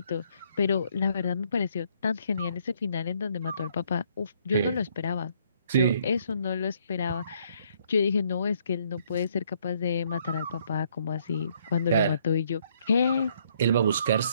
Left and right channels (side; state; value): both; inverted; correlation -0.68